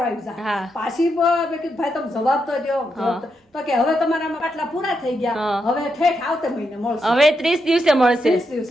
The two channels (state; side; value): normal; both; correlation 0.83